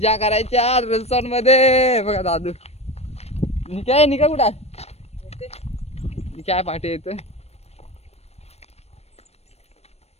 करायच्या रिसॉर्ट मध्ये. बघा दादू निका कुठं काय पाठी येतोय.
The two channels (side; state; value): right; late; 0.31 ms